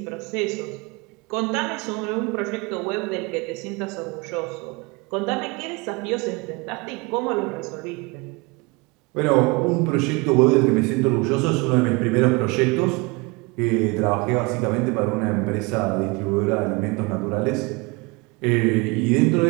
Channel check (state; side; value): quieter; left; 26.8 dB